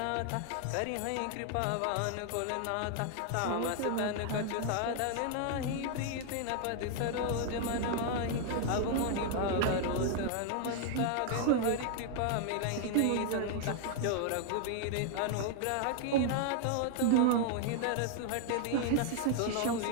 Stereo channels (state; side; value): different; both; correlation 0.00